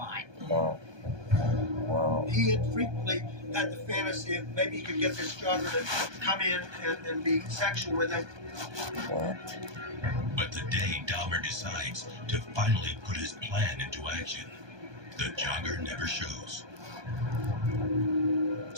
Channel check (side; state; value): left; late; 1.2 ms